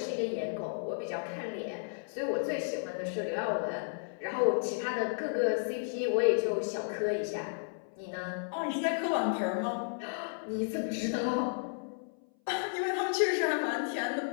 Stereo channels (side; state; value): right; silent; 56 dB below the other